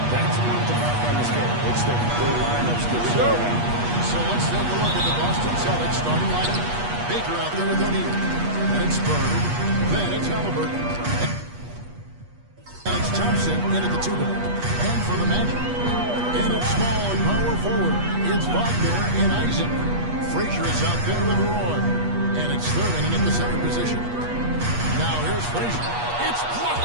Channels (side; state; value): left; late; 8.3 ms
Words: That's one to mark on the schedule. It's their lineups that start out. So let's take a look at the Boston Celtics starting lineup. Baker out there with O'Neal. Then it's Bird. Then it's Halliburton. And it's Thompson in at the 2-guard. And for the Magic, in at small and power forward, it's Wagner and Isaac. Frazier is out there with Roy. And it's Thurman in at the center position. Now here's Frazier. It's